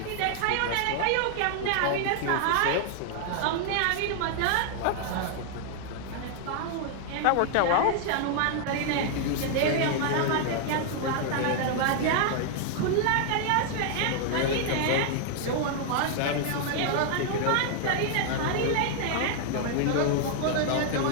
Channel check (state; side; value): different; both; correlation 0.00